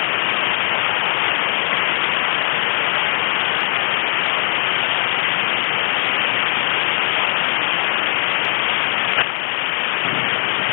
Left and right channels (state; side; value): silent; right; 61 dB below the other